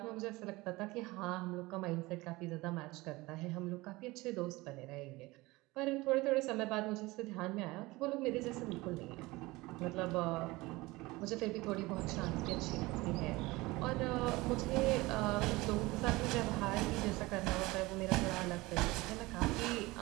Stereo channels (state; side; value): quieter; left; 21.3 dB